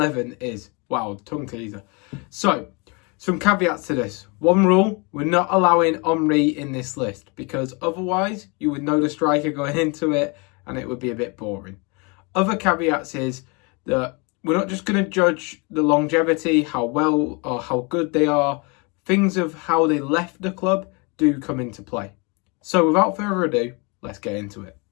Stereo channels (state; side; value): quieter; right; 30.7 dB